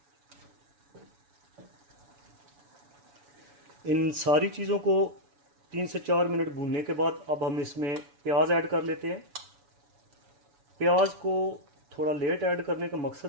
इन सारी चीज़ों को 3 से 4 मिनट भूनने के बाद अब हम इसमें प्याज ऐड कर लेते हैं। प्याज को थोड़ा लेट ऐड करने का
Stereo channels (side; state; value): left; late; 7.0 ms